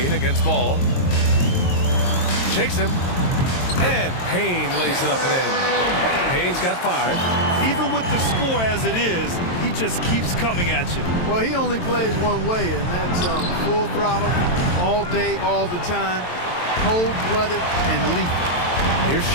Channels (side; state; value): right; late; 22 ms